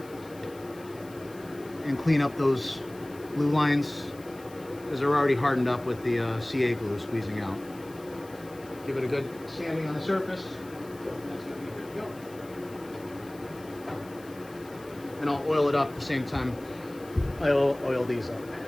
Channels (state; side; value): noise; left; hiss, 23 dB below the sound